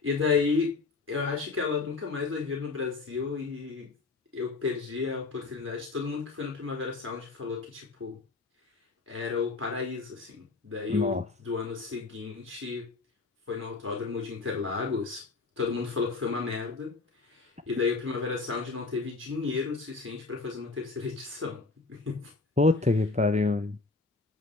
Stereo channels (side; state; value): right; quieter; 3.9 dB